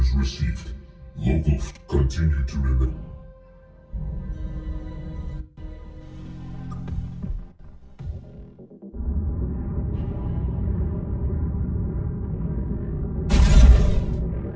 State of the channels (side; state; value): both; identical; correlation 1.00